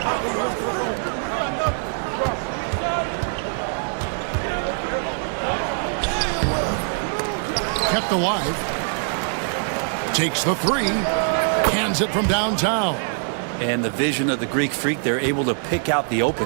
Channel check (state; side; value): silent; left; 63 dB below the other